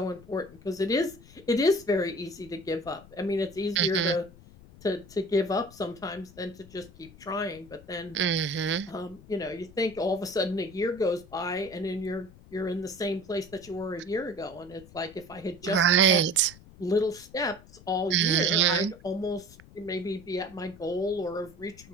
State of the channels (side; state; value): left; noise; rumble, 21 dB below the sound